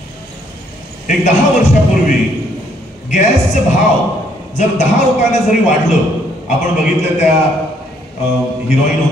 एक 10 वर्षापूर्वी गॅसचे भाव जर 10 रुपयाने जरी वाढलं, आपण बघितलं त्या हिरोईन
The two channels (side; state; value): both; normal; correlation 0.68